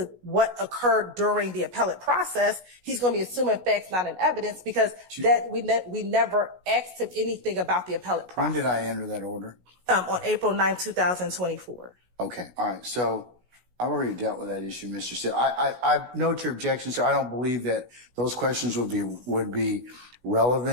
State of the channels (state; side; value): late; left; 16 ms